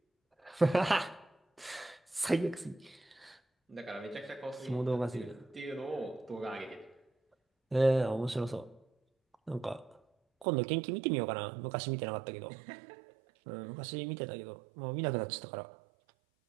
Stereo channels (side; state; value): left; drops out; at 10.5 s